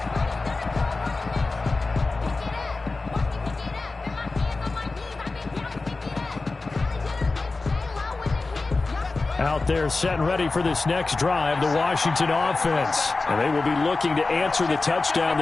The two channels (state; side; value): quieter; right; 3.6 dB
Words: Out there set and ready for this next drive, the Washington offense. And they will be looking to answer the touchdown